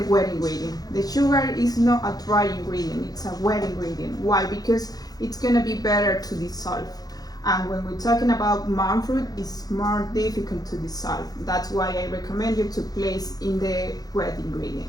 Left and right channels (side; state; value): right; late; 0.19 ms